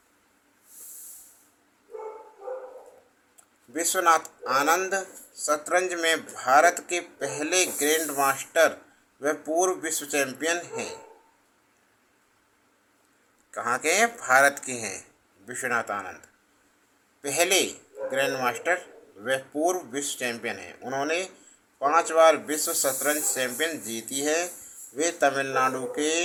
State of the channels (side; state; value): both; identical; correlation 1.00